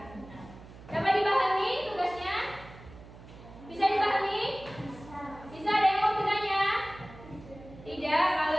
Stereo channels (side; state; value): right; noise; hum, 18 dB below the sound